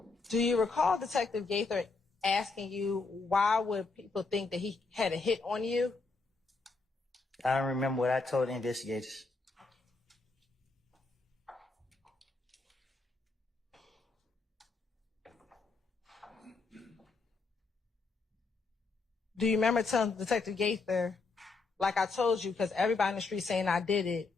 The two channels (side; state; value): right; quieter; 4.0 dB